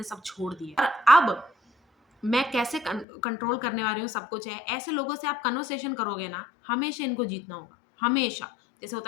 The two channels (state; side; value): drops out; right; at 3.1 s